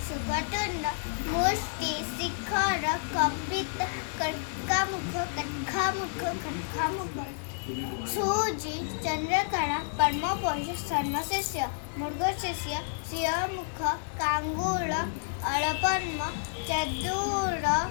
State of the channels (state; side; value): silent; right; digital silence